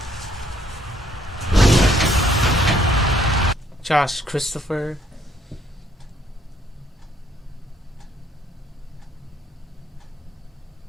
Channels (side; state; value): both; normal; correlation 0.67